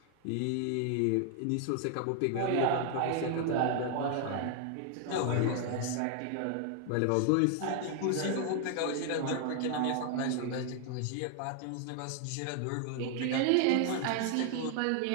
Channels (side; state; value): both; different; correlation 0.00